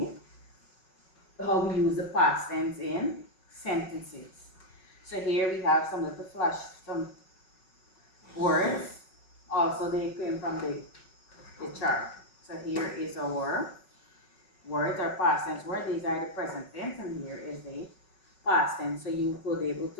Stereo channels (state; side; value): late; right; 5.4 ms